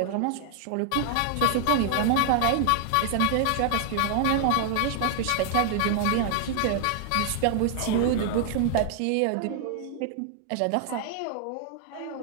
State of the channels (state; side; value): different; both; correlation 0.00